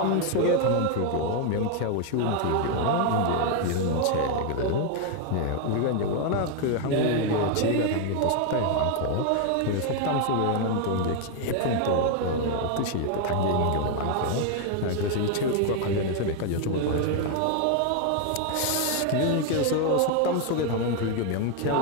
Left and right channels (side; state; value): both; different; correlation 0.00